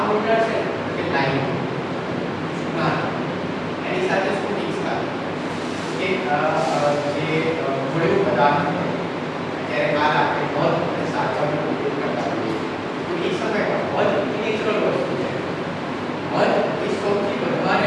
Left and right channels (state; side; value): identical; both; correlation 1.00